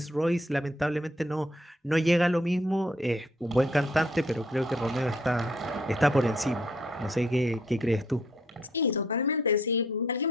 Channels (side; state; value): both; normal; correlation 0.67